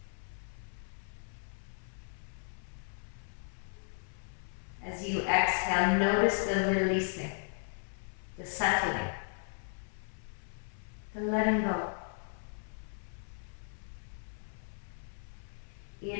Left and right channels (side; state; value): right; silent; 54 dB below the other